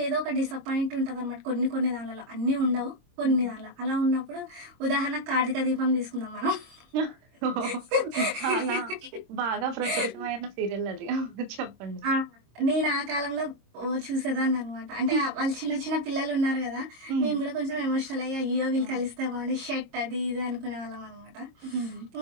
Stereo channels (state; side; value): late; left; 26 ms